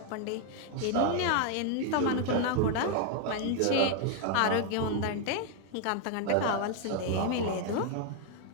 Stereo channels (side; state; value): both; different; correlation 0.01